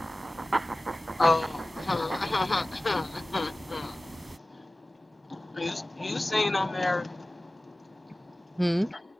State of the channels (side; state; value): both; normal; correlation 0.97